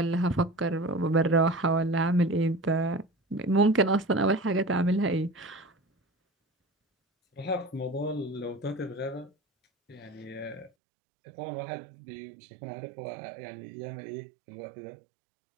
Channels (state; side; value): drops out; left; at 10.7 s